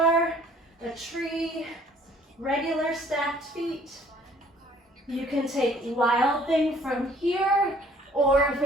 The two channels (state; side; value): normal; both; correlation 0.57